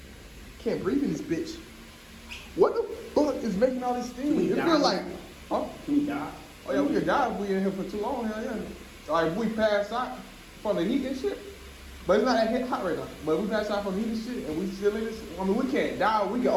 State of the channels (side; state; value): both; identical; correlation 1.00